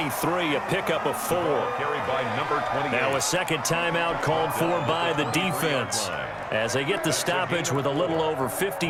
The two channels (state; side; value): identical; both; correlation 1.00